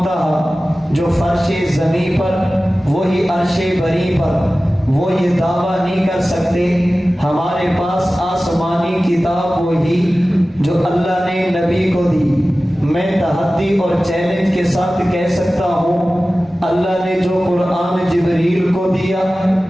جو فرش زمین پر وہی عرش بری پر، وہ یہ دعویٰ نہیں کر سکتے ہمارے پاس آسمانی کتاب وہی جو اللہ نے نبی کو دی۔ میں تحدی اور چیلنج کے ساتھ کہہ سکتا ہوں، اللہ نے جو قرآن جبریل کو دیا،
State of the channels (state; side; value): normal; both; correlation 0.96